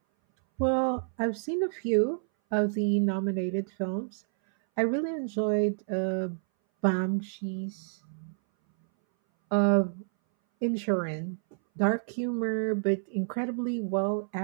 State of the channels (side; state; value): left; silent; 59 dB below the other